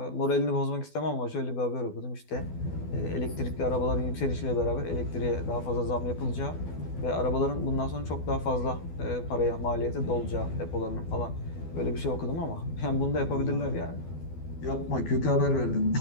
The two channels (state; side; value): late; right; 12 ms